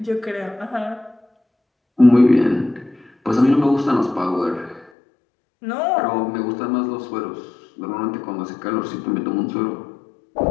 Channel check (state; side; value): drops out; right; at 4.9 s